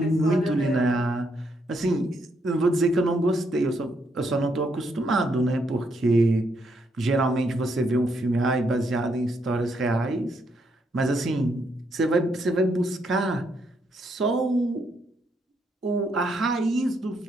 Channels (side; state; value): both; normal; correlation 0.76